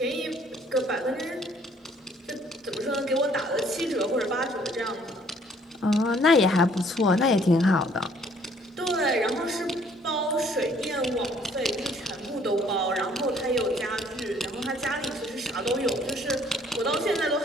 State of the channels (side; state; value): both; normal; correlation 0.61